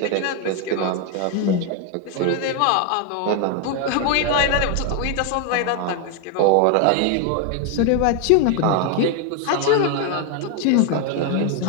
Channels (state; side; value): different; both; correlation 0.01